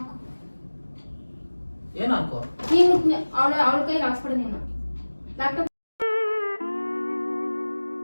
ಏನ್ ಹಾಕೋ ನೀನು ಅವಳ ಕೈಗೆ ಹಾಕ್ಸ್ಬಿಡು ನೀನು ಲ್ಯಾಪ್ಟಾಪ್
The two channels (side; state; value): both; inverted; correlation -1.00